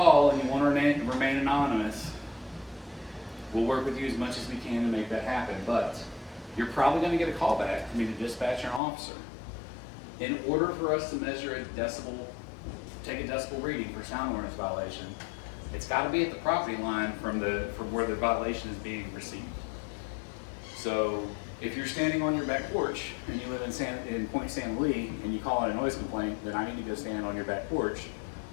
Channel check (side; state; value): right; drops out; at 8.8 s